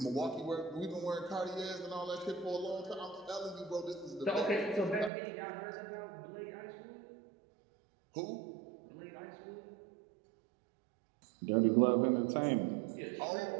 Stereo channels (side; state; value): left; drops out; at 5.1 s